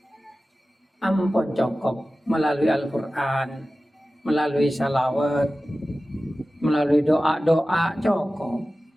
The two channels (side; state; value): both; normal; correlation 0.95